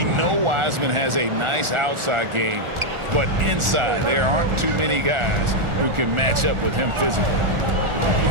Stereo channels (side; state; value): left; late; 1.4 ms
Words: know Wiseman has a nice outside game, but inside there aren't too many guys who can match up with him physically.